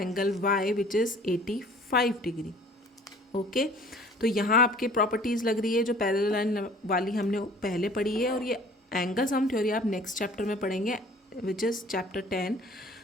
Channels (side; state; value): both; normal; correlation 0.51